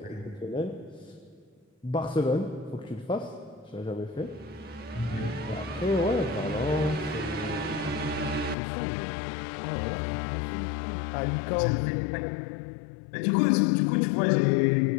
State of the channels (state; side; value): drops out; right; at 8.6 s